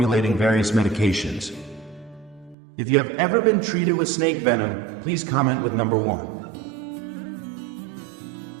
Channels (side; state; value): left; drops out; at 2.6 s